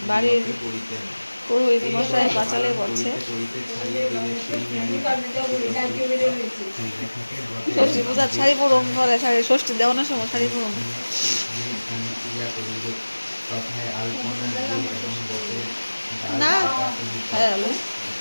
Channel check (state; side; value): inverted; both; correlation -1.00